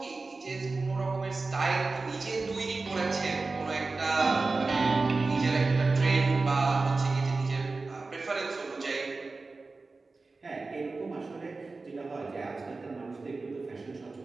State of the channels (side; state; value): left; quieter; 3.7 dB